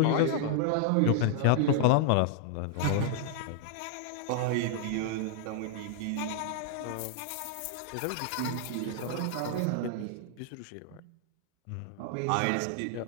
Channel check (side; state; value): both; different; correlation -0.01